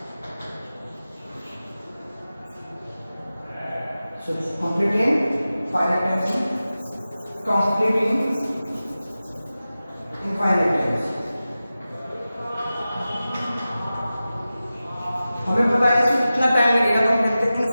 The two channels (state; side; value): inverted; both; correlation -0.95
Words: So complete in finite times, complete in infinite times। हमें पता है इसमें कितना टाइम लगेगा, तो हम कहते हैं